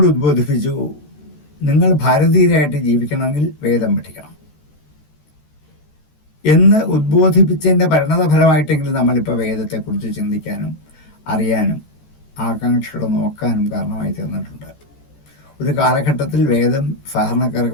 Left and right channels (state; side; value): late; right; 14 ms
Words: ഉദ്ബോധിപ്പിച്ചു, നിങ്ങൾ ഭാരതീയരായിട്ട് ജീവിക്കണമെങ്കിൽ വേദം പഠിക്കണം എന്ന് ഉദ്ബോധിപ്പിച്ചതിൻ്റെ പരിണതഫലമായിട്ടെങ്കിലും നമ്മളിപ്പോൾ വേദത്തെക്കുറിച്ച് ചിന്തിക്കാനും അറിയാനും ആകാംക്ഷകൾ നോക്കാനും കാരണമായി തീർന്നിട്ടുണ്ട്. ഒരു കാലഘട്ടത്തിൽ വേദം